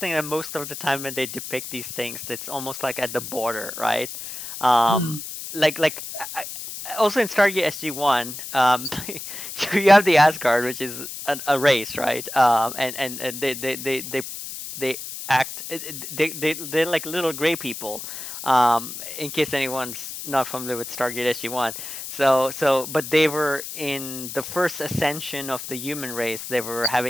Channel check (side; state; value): left; noise; hiss, 9 dB below the sound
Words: that most of the time when they depict these things, it's almost like at the border, right? Um, Mm. like also in Stargate SG-1, you have the Asgard, which is a race, right? And they act they're like little gray people. In case anyone's not familiar with Stargate SG-1, but they were in the first ascension of the human race. They were